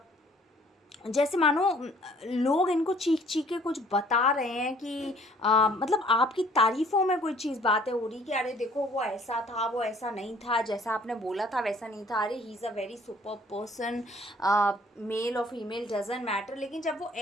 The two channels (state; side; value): normal; both; correlation 0.57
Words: जैसे मानो लोग इनको चीख चीख के कुछ बता रहे हैं कि मतलब आपकी तारीफ़ों में कोई चीज़ बातें हो रही कि अरे देखो वो ऐसा था, वो ऐसा नहीं था, जैसा आपने बोला था वैसा नहीं था, अरे he is a very super person, male और फीमेल डजंट मैटर। लेकिन जब वो